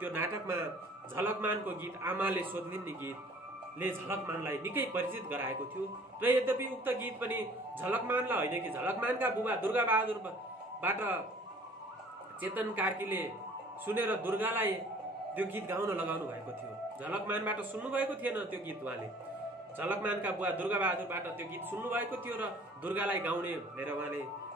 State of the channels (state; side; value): normal; both; correlation 0.52